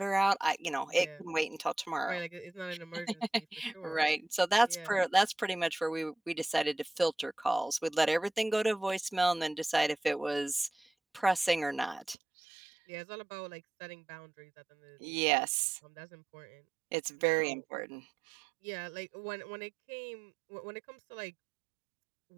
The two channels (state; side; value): drops out; left; at 12.2 s